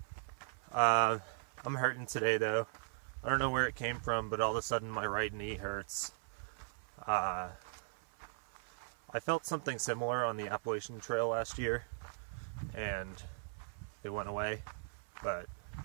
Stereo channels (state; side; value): silent; left; 52 dB below the other